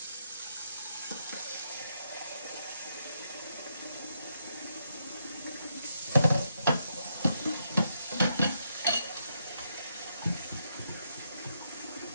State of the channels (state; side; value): inverted; both; correlation -0.79